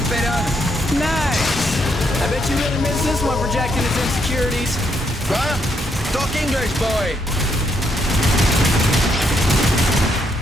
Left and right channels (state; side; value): normal; both; correlation 0.75